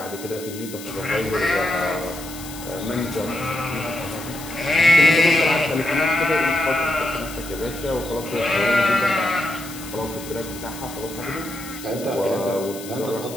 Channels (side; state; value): left; noise; hiss, 14 dB below the sound